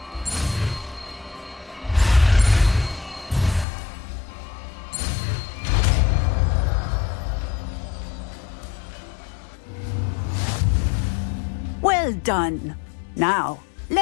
Well done. Now,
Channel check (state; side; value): drops out; right; at 3.7 s